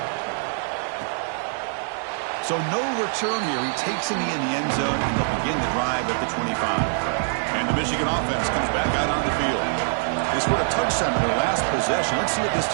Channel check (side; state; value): left; silent; digital silence